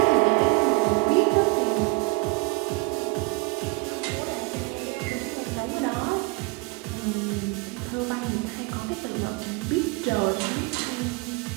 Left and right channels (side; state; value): left; quieter; 25.4 dB